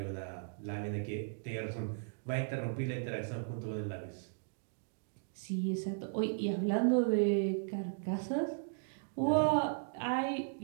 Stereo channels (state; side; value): silent; left; digital silence